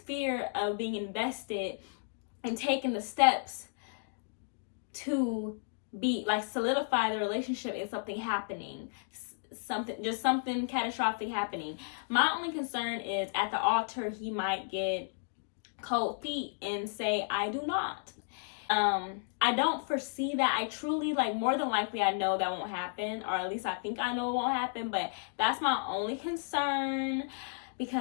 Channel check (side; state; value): right; silent; digital silence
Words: fear of being invested and taking the steps to be like solidify the relationship in something happening, something catastrophic happening. My only concern is at the altar he might get cold feet and say, I do not. I don't foresee that. I truly, like, more than likely I know that won't happen, or at least I think I know it won't happen, but that's my only concern.